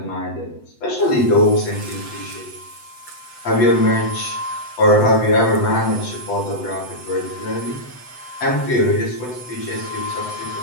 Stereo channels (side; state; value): right; late; 7.9 ms